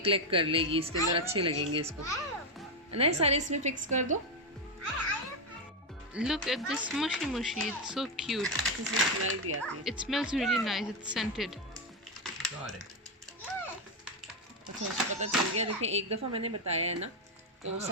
कलेक्ट कर लेगी. इसके अंदर अच्छे लगेंगे इसको. नहीं सारे इसमें फिक्स कर दो. Look at this mushy. It's so cute. इसमें स्मेल भी आती है. It smells really nice. It's scented. Got it. अच्छा उसको पता चल गया. देखिए एक दफ़ा मैंने बताया है ना तो वो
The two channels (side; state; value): both; normal; correlation 0.07